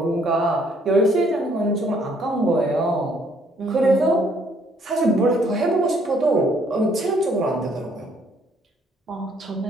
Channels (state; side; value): normal; both; correlation 0.65